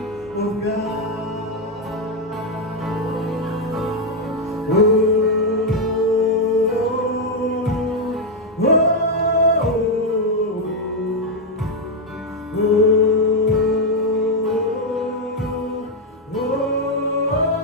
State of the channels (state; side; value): normal; both; correlation 0.02